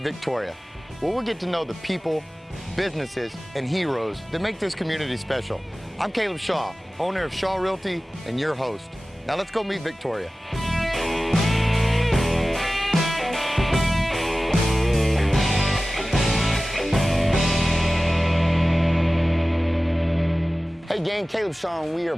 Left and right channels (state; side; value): normal; both; correlation 0.96